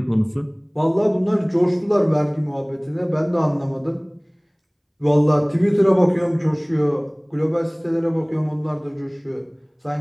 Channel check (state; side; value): identical; both; correlation 1.00